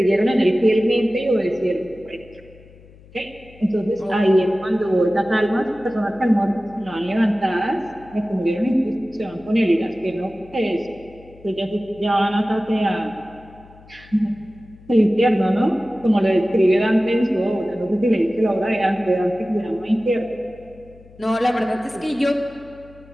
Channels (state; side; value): noise; left; hum, 24 dB below the sound